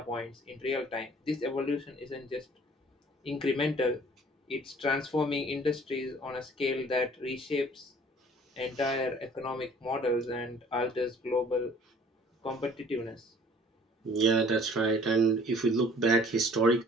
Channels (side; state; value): both; normal; correlation 0.53